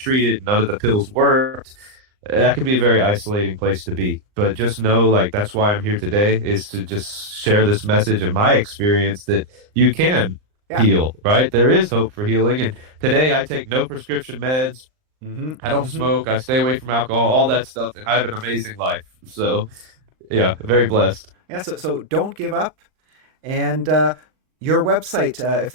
it. None of the pills worked. That can be a very isolating place to be. But just know, like, that's why I'm here today, is to just share this message of my experience that you can Yeah. heal, right? There is hope for healing. And today I take no prescription meds. Hmm. I don't Hmm. smoke. I stay away from alcohol, all that stuff. And I have an amazing life. So, yeah, very blessed. Yeah. So don't give up. And your website, if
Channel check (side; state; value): left; late; 39 ms